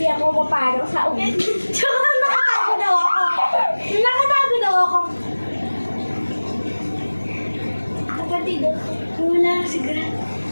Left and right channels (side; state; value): both; inverted; correlation -1.00